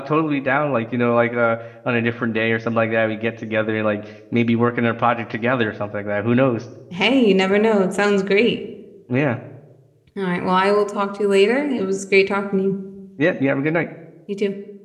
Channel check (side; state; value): both; identical; correlation 1.00